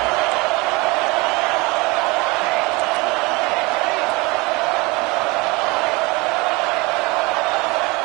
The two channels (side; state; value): left; quieter; 25.1 dB